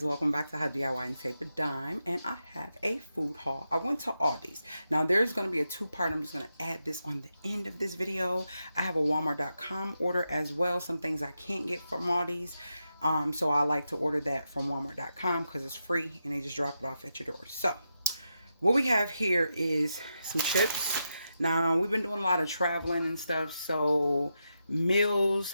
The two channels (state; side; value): inverted; both; correlation -0.86